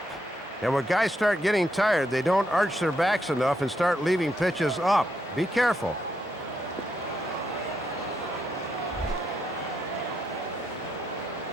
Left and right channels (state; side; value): normal; both; correlation 0.79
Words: And when guys start getting tired, they don't arch their backs enough and start leaving pitches up. Be careful.